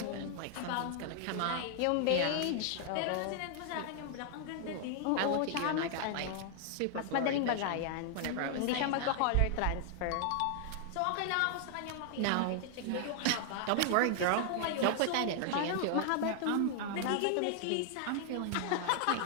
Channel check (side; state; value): both; different; correlation 0.00